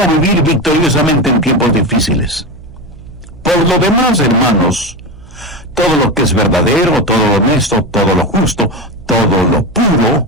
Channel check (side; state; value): right; noise; hum, 20 dB below the sound